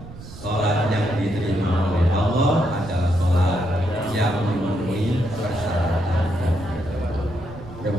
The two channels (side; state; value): right; noise; rumble, 15 dB below the sound